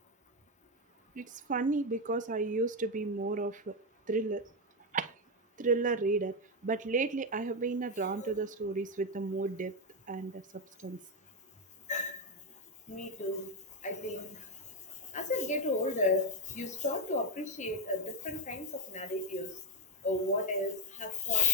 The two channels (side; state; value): both; normal; correlation 0.08